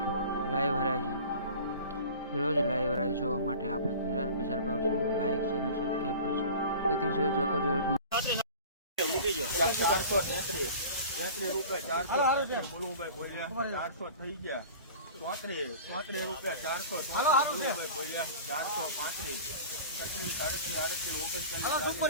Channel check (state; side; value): inverted; both; correlation -0.40